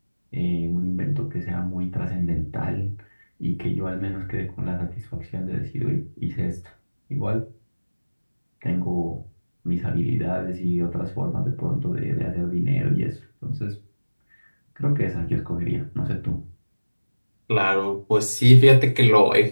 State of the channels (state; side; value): inverted; both; correlation -1.00